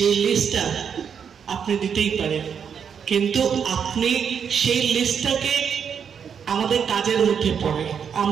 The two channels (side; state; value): left; quieter; 7.3 dB